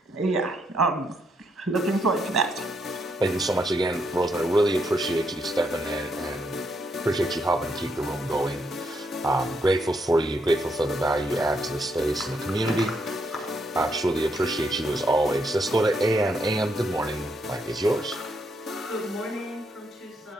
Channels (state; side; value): normal; both; correlation 0.76